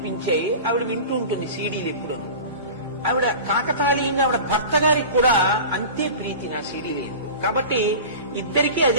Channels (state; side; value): inverted; both; correlation -0.34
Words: ఆవిడ వింటూ ఉంటుంది సీడీలు ఎప్పుడు. ఆవిడ కాకతాళీయంగా ఆవిడ భర్త గారికి కూడా అంతే ప్రీతి నా సీడీలు. కాబట్టి ఇద్దరికీ